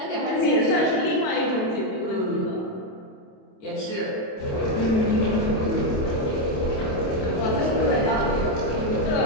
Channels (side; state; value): right; late; 27 ms